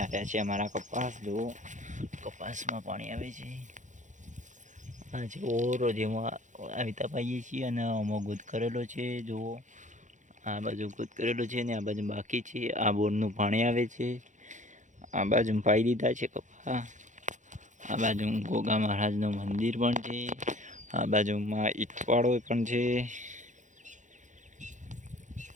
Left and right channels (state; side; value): late; left; 0.36 ms